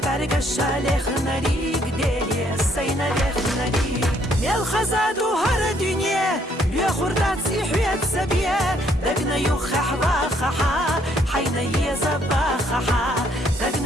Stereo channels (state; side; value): normal; both; correlation 0.67